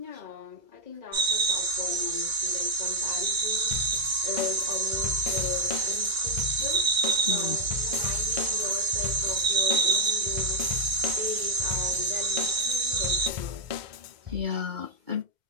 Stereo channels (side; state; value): left; late; 2.1 ms